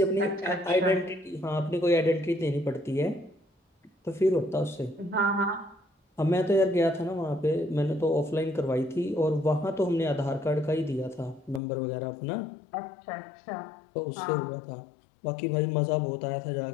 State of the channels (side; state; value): right; drops out; at 11.6 s